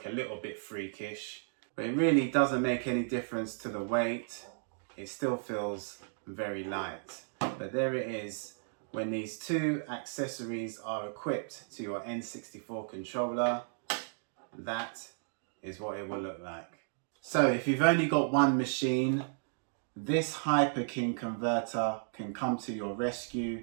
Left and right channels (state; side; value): silent; left; digital silence